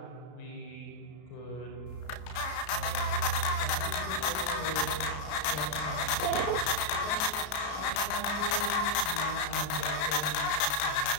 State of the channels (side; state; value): right; late; 33 ms